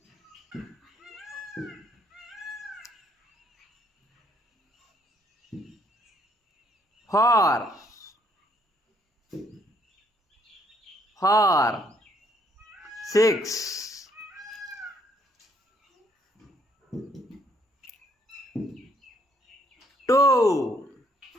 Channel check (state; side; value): normal; both; correlation 0.68